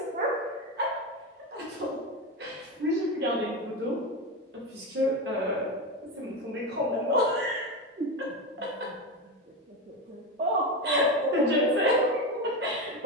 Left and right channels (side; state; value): both; normal; correlation 0.17